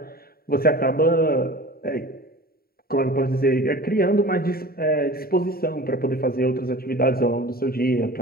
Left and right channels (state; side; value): late; right; 0.44 ms